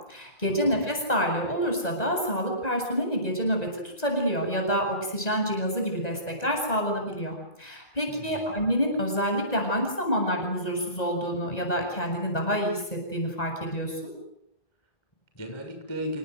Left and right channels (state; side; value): late; right; 1.9 ms